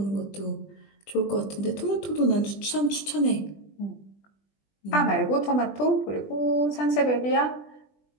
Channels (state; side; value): late; right; 20 ms